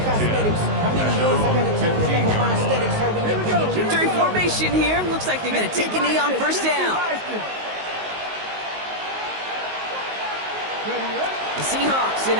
Victory formation here. Looks like they're going to take a knee on first down. The Seahawks in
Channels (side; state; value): left; late; 19 ms